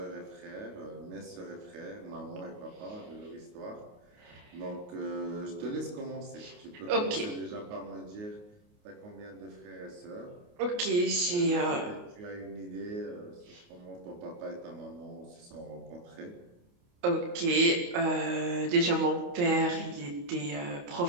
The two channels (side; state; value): left; late; 28 ms